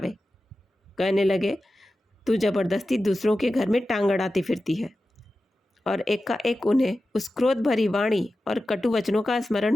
कहने लगे, तू जबरदस्ती दूसरों के घर में टांग अड़ाती फिरती है। और एकाएक उन्हें उस क्रोध भरी वाणी और कटु वचनों का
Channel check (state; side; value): normal; both; correlation 0.93